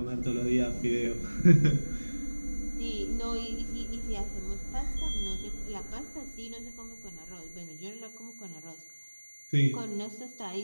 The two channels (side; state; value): both; inverted; correlation -1.00